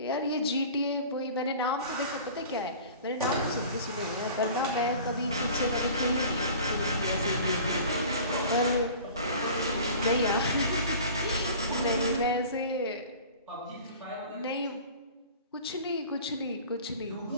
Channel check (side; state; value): both; inverted; correlation -0.42